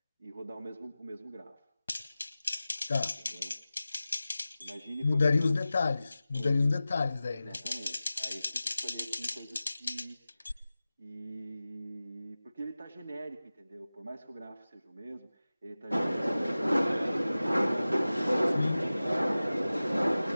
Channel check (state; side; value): inverted; both; correlation -0.96